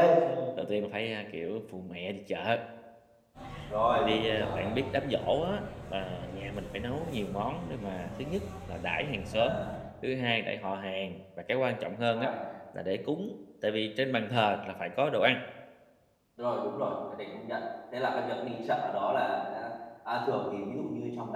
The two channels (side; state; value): both; identical; correlation 1.00